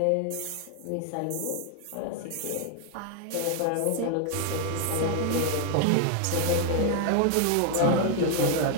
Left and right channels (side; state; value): both; different; correlation 0.01